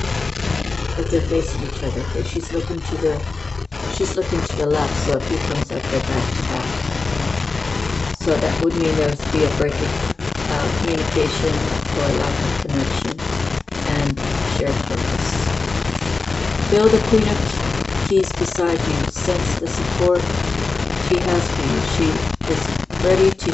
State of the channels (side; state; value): right; quieter; 3.9 dB